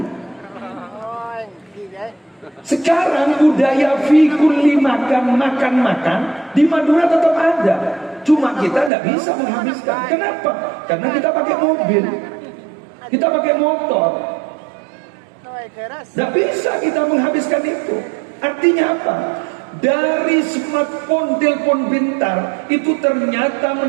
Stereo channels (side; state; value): left; drops out; at 8.9 s